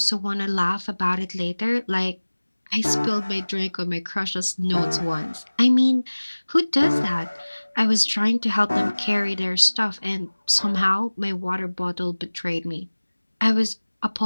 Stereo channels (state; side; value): inverted; both; correlation -1.00